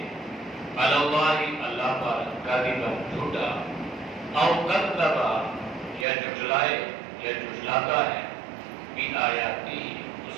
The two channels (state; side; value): drops out; left; at 6.1 s